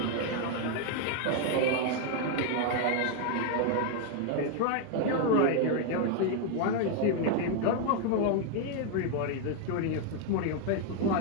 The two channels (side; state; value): both; different; correlation 0.00